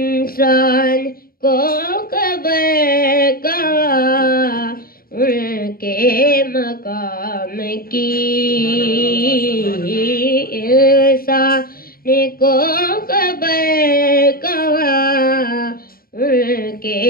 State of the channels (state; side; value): late; right; 0.43 ms